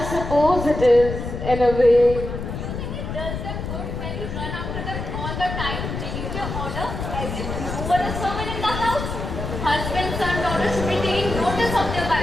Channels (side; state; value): left; noise; rumble, 5 dB below the sound